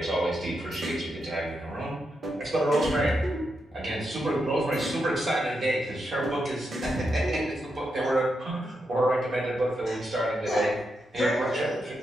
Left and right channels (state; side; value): normal; both; correlation 0.84